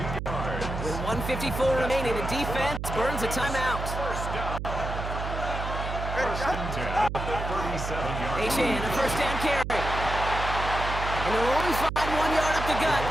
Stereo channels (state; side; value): noise; right; hum, 5 dB below the sound